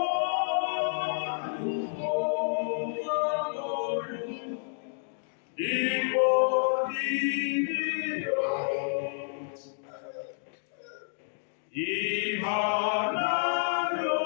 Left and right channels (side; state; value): right; silent; digital silence